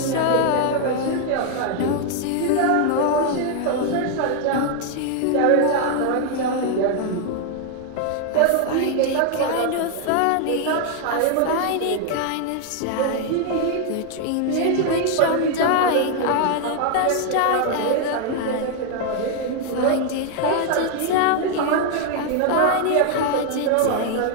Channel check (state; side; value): different; both; correlation 0.00